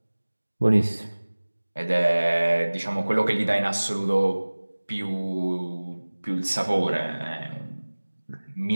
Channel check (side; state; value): both; inverted; correlation -1.00